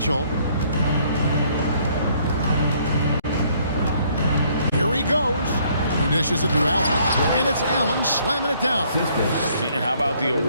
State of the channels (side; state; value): both; inverted; correlation -0.64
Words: Here he goes. He dishes it to Allen. And it's Allen slamming it down. And how about the